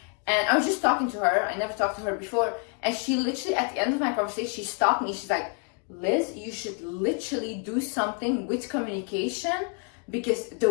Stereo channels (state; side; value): quieter; right; 37.7 dB